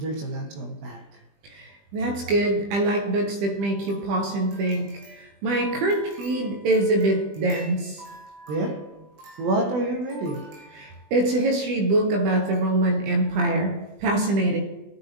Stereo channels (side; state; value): left; late; 20 ms